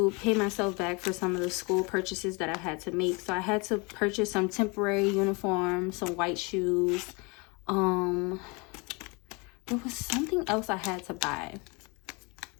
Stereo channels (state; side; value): quieter; right; 29.2 dB